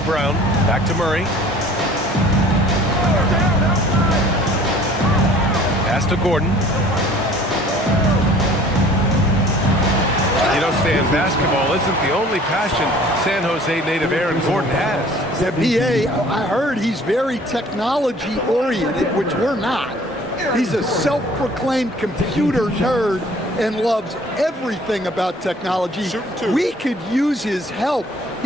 Brown. Back to Murray. Pass to Gordon. You know, Stan, basketball isn't the only passion San Jose native Aaron Gordon has. The BA, I heard he's very technology-oriented, which we're not. He's a self-proclaimed computer nerd and loves everything about technology. We could use his help.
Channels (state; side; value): normal; both; correlation 0.51